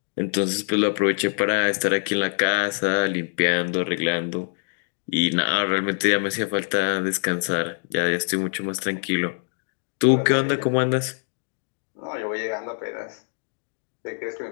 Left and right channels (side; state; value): right; silent; digital silence